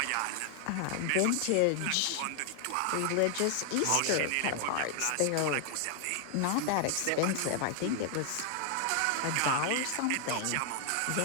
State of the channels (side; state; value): both; different; correlation 0.00